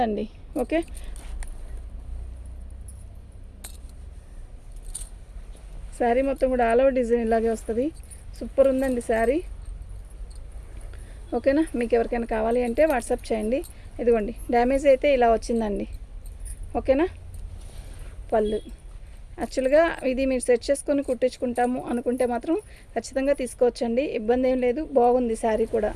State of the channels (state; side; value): identical; both; correlation 1.00